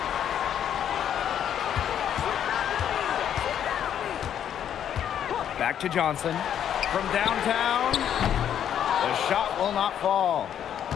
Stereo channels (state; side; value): quieter; right; 9.6 dB